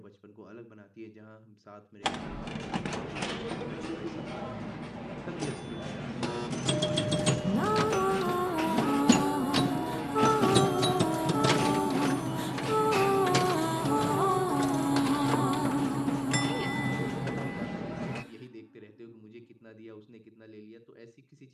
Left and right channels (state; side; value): identical; both; correlation 1.00